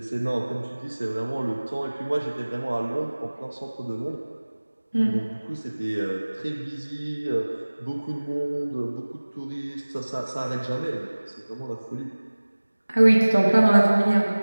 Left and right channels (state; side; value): inverted; both; correlation -1.00